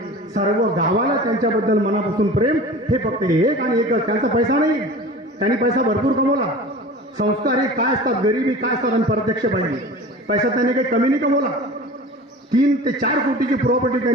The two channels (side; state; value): both; normal; correlation 0.38